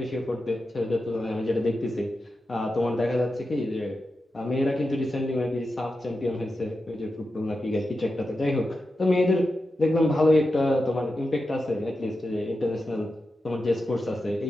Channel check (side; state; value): both; normal; correlation 0.90